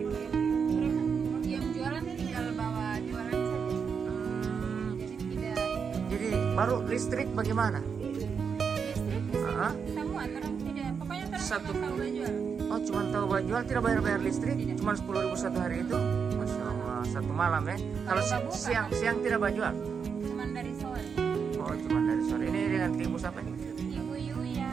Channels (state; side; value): quieter; left; 6.3 dB